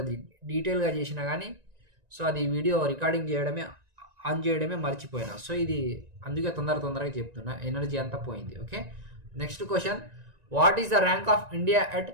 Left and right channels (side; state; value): left; late; 1.9 ms